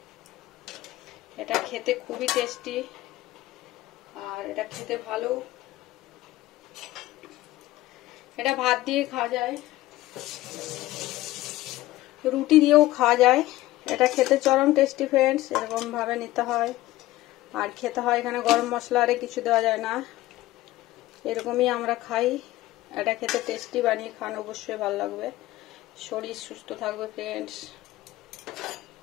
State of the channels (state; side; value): quieter; right; 16.8 dB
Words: এটা খেতে খুবই টেস্টি, আর এটা খেতে ভালো। এটা ভাত দিয়ে খাওয়া যায়, রুটি দিয়েও খাওয়া যায়। এটা খেতে চরম টেস্টি ফ্রেন্ডস, এরকম ভাবে নিতে হয়। আর খেতে হয়, এখানে গরম মশলা আরে কিছু দেওয়া যায় না, এরকমই আমরা খাই। এটা খেতে টেস্টি, বানিয়ে খান, অবশ্যই ভালো লাগবে, শরীর সুস্থ থাকবে ফ্রেন্ডস।